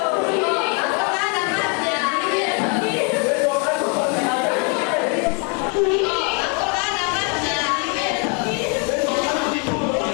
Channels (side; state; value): right; quieter; 36.0 dB